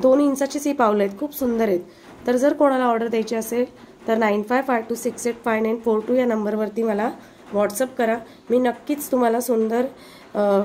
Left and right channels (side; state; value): both; identical; correlation 1.00